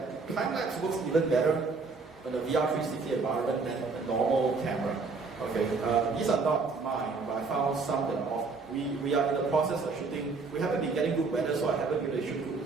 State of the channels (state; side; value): quieter; left; 4.3 dB